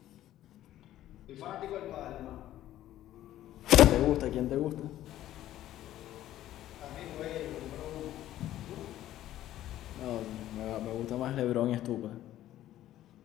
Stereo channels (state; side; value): quieter; right; 13.3 dB